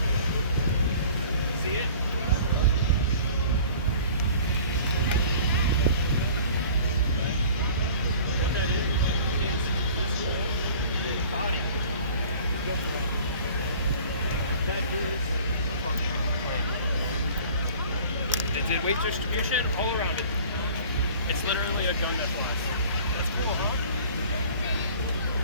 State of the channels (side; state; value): both; inverted; correlation -0.46